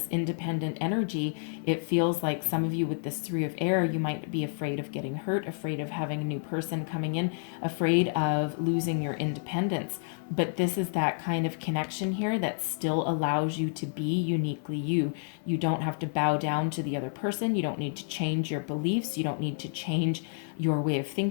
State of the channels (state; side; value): silent; right; digital silence